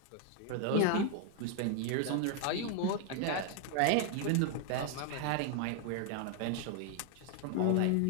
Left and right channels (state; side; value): different; both; correlation 0.00